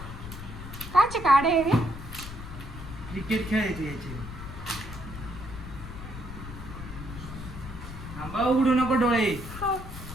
काचे काढे आहे रे? क्रिकेट खेळायचे याचे. थांबा उघडू नको डोळे.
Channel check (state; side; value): noise; left; rumble, 11 dB below the sound